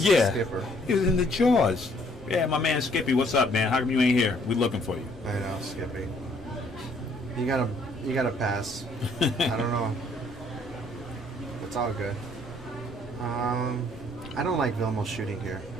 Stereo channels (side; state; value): both; normal; correlation 0.63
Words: Yeah. skipper. He was in the jaws. Yeah, my man Skippy, what's up, man? How come you ain't here? We looking for you. I know, Skippy. You gotta pass. I don't know. It's all good. I don't like Vilmos shooting here.